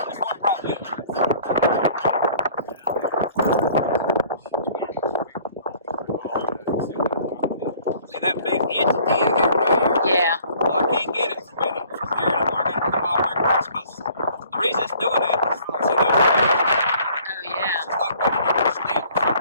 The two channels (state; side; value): inverted; both; correlation -0.54